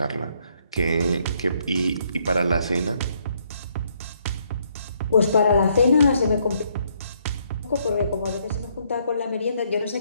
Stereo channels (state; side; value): inverted; both; correlation -0.71